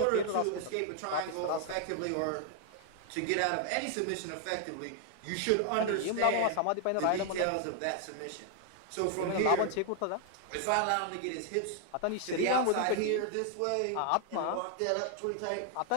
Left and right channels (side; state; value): both; different; correlation 0.00